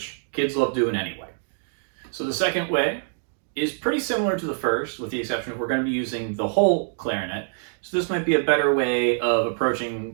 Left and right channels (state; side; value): silent; left; digital silence